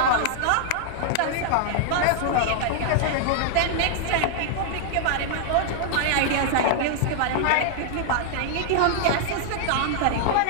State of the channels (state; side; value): different; both; correlation -0.01